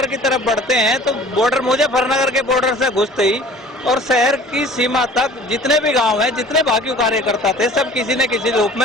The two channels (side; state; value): both; normal; correlation 0.47